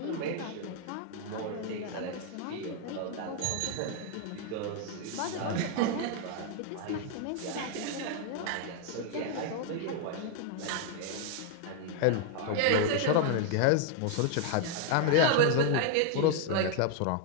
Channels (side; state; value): both; different; correlation 0.00